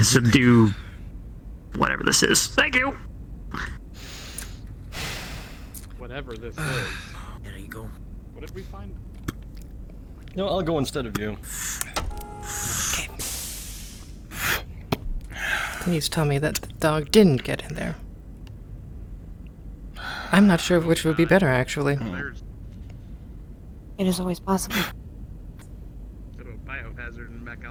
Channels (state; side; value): identical; both; correlation 1.00